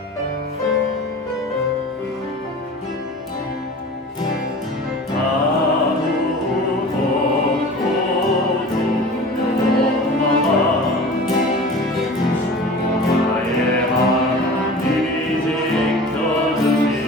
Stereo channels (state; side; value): normal; both; correlation 0.38